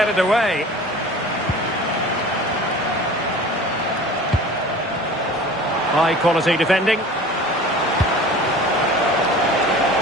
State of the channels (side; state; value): both; normal; correlation 0.41